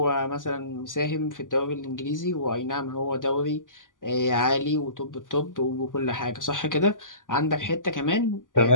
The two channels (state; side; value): late; right; 0.88 ms